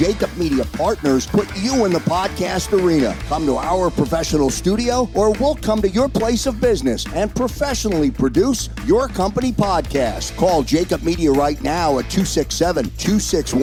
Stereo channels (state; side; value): identical; both; correlation 1.00